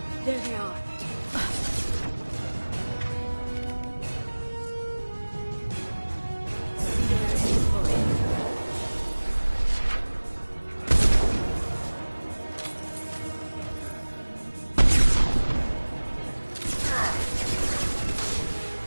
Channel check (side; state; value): both; inverted; correlation -1.00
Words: There they are.